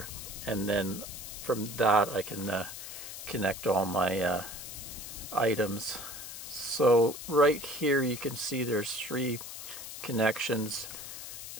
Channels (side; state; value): left; noise; hiss, 10 dB below the sound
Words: and then from that I can connect all my items. So right here you can see there's 3 connections.